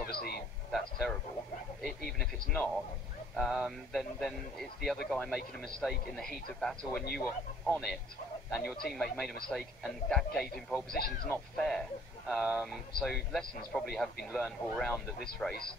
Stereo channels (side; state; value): both; normal; correlation 0.57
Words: that's terrible. Even if it's not, then it's the other guy making a mistake in the heat of battle when you were on it, and your teammate made a mistake, and that gave him pole position. It's not fair. So lessons probably have been learned all round at this race,